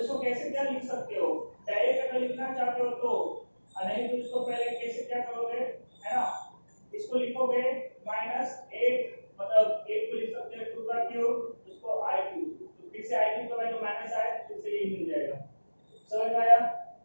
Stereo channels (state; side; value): inverted; both; correlation -1.00